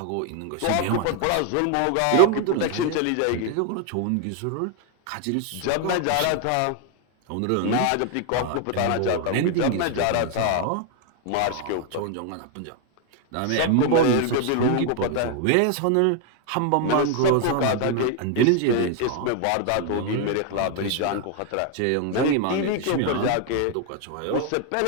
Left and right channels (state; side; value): different; both; correlation 0.01